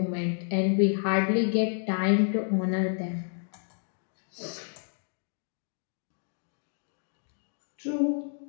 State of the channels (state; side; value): silent; right; 58 dB below the other